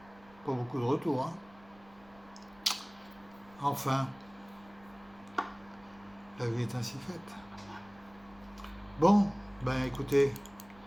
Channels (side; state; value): right; noise; rumble, 26 dB below the sound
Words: pas beaucoup de retours, hein. Enfin, la vie est ainsi faite. Bon, ben écoutez,